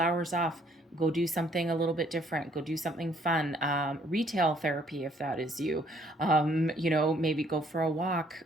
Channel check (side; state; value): both; normal; correlation 0.64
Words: off, go do something a little bit different, go do something fun, retail therapy if that is you, you know, maybe go for a walk